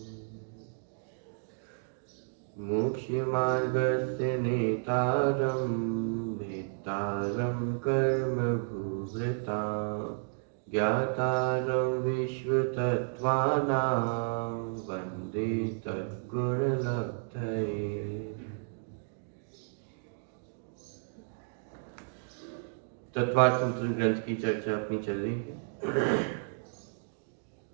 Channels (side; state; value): left; silent; digital silence